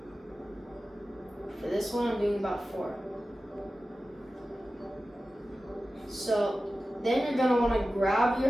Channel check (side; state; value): both; normal; correlation 0.94